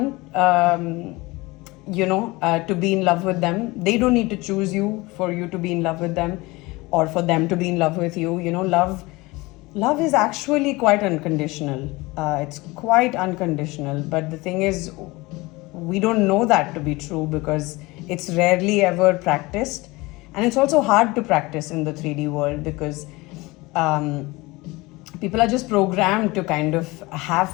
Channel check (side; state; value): right; quieter; 22.3 dB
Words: to be in love with them. They don't need to choose you for you to be in love with them, or for them to be in love with you. Love is actually quite unconditional. It's quite unconditional. But the thing is, we don't know that to be true because it's rarely ever practiced. And it's also hard to practice in the 3D world because people are just programmed to kind of